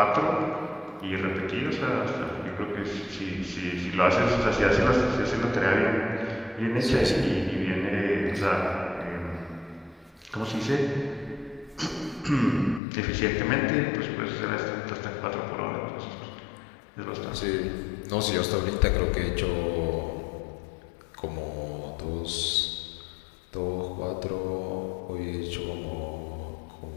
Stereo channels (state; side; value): drops out; right; at 12.8 s